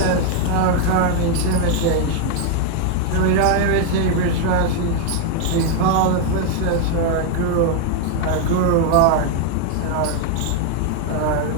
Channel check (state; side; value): different; both; correlation 0.00